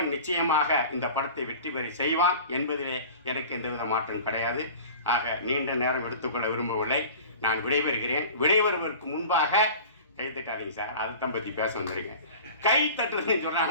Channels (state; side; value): inverted; both; correlation -0.40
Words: நிச்சயமாக இந்த படத்தை வெற்றி பெற செய்வான் என்பதிலே எனக்கு எந்தவித மாற்றம் கிடையாது. ஆக நீண்ட நேரம் எடுத்துக்கொள்ள விரும்பவில்லை, நான் விடைபெறுகிறேன். விடைபெறுவதற்கு முன்பாக கை தட்டாதீங்க சார், அதைத்தான் பற்றி பேச வந்துருங்க. கை தட்டுறதுன்னு